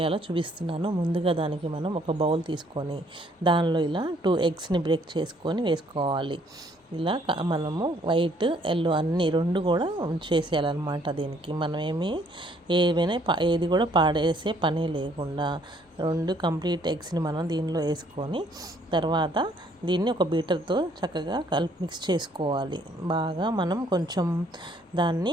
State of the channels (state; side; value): normal; both; correlation 0.64